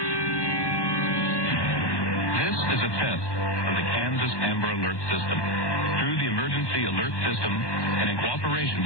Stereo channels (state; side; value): late; right; 1.2 ms